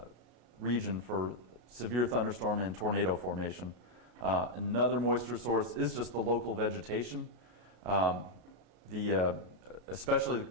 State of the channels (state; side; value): late; left; 33 ms